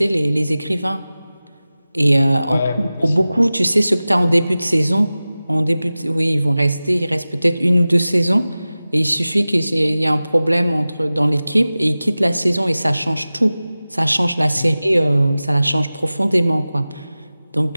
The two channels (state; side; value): inverted; both; correlation -0.97